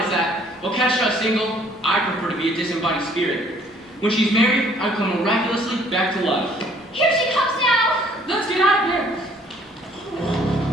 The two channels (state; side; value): normal; both; correlation 0.59